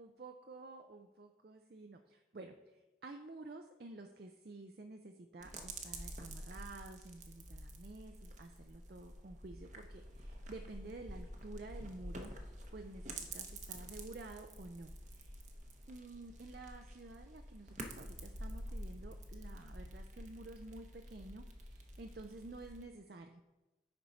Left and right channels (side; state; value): both; normal; correlation 0.63